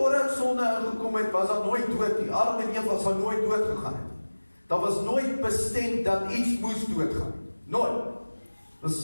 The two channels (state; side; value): inverted; both; correlation -1.00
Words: sonde ingekom het, was daar nooit dood nie. Adam en Eva sal nooit dood gegaan het. Daar was nooit bestem dat iets moes doodgaan. Nooit. Dus